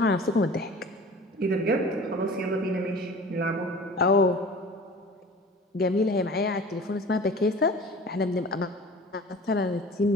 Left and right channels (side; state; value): both; normal; correlation 0.42